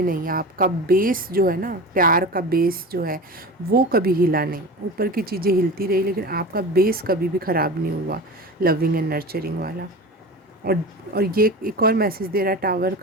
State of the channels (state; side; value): normal; both; correlation 0.31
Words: नहीं। आपका बेस जो है ना, प्यार का बेस जो है वो कभी हिला नहीं। ऊपर की चीज़ें हिलती रही, लेकिन आपका बेस कभी भी ख़राब नहीं हुआ, लविंग एंड नर्चरिंग वाला। और ये एक और मैसेज दे रहा है टावर